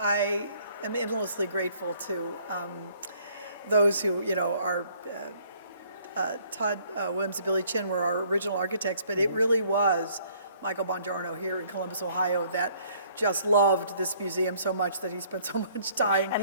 am endlessly grateful to those who, are Todd Williams and Billy Chin were our original architects, but it really was Michael Bongiorno here in Columbus, Ohio, that just loved this museum so much that he spent so much time.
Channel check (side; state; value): both; inverted; correlation -0.60